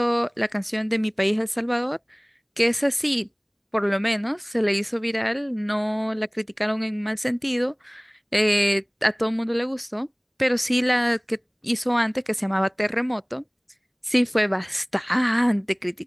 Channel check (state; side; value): identical; both; correlation 1.00